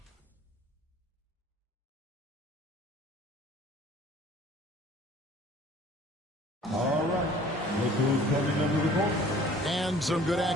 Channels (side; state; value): both; normal; correlation 0.51